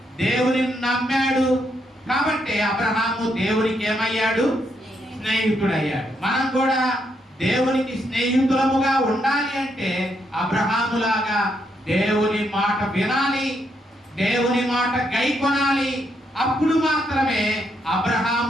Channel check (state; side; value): normal; both; correlation 0.77